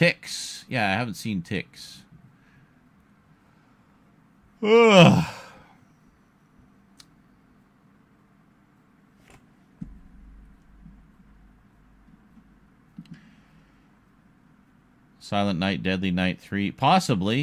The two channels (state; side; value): identical; both; correlation 1.00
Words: Yeah, I haven't seen Ticks. Ugh. Silent Night, Deadly Night 3.